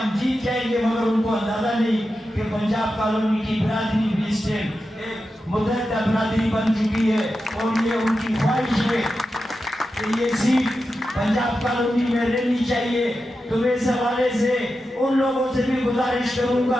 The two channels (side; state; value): both; normal; correlation 0.90